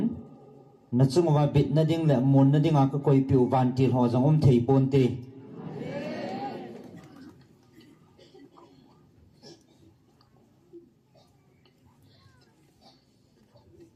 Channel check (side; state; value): both; identical; correlation 1.00